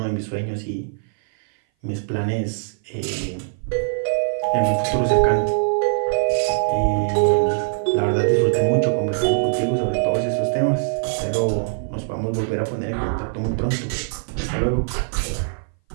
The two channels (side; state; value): left; silent; 59 dB below the other